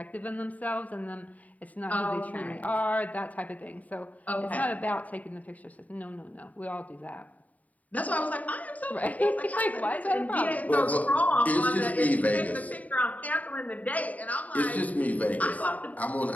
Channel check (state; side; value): late; right; 0.073 ms